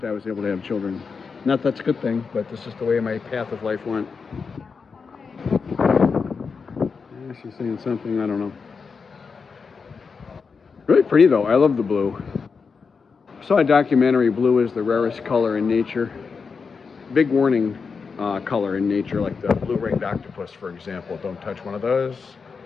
I was able to have children. Not that's a good thing, but that's just the way my path of life went. Yeah, she's saying something, I don't know. Really pretty though. I love the blue. I saw a documentary, blue is the rarest color in nature. Big warning color in nature, like the blue-ringed octopus, for example. Don't touch one of those.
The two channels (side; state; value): right; quieter; 5.3 dB